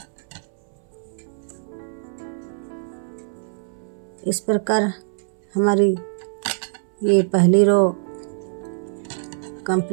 इस प्रकार हमारी ये पहली रो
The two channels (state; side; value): silent; left; 63 dB below the other